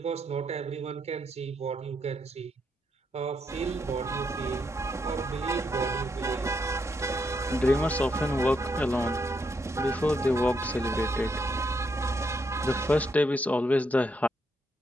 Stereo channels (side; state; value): both; normal; correlation 0.78